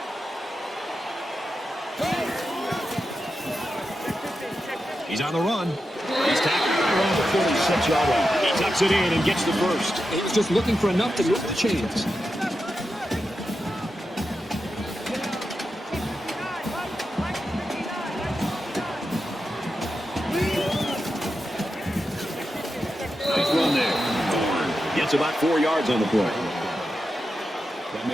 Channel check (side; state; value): both; normal; correlation 0.89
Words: He's on the run. He's tackled around the 46-yard line. He tucks it in and gets the first. He was just looking for enough to move the chains. Nice run there. Horn gets about 4 yards on the play. That